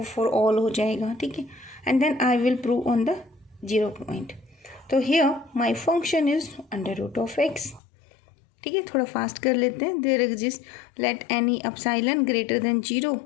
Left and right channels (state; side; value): drops out; right; at 7.8 s